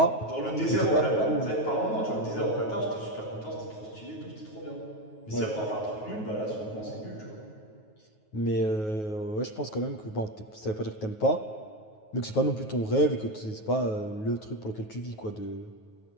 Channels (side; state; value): right; late; 9.4 ms